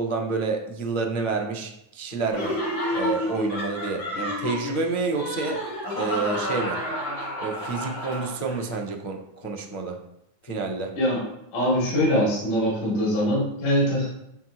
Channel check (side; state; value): right; late; 9.0 ms